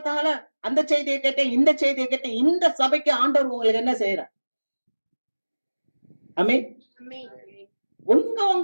அந்த செய்தியை கேட்டேன், இந்த செய்தியை கேட்டேன். இந்த சபைக்கு ஆண்டவர் உங்களுக்கு என்ன செய்யறார்? ஆமென்.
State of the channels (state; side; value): inverted; both; correlation -1.00